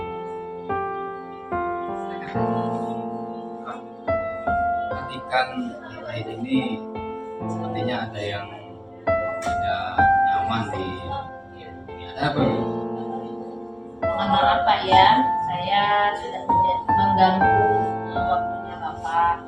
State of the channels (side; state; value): both; identical; correlation 1.00